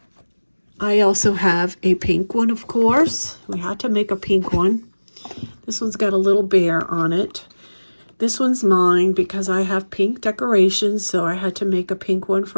I also have a pink one, of course. We had to make a pink one. This one's got a little bear on it. This one's mine because I have pink decorations, so I had to make a pink one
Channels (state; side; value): inverted; both; correlation -1.00